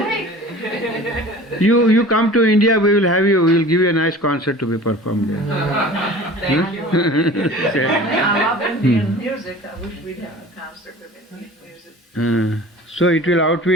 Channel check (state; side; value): normal; both; correlation 0.42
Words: you come to India, we will give you a nice concert to be performed there. Thank you. I love Indian music. I wish we'd have a concert with Indian music. So it will